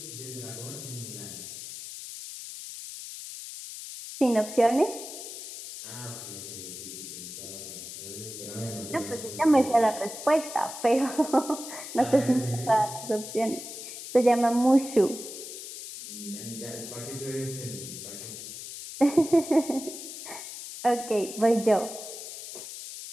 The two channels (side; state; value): left; noise; hiss, 10 dB below the sound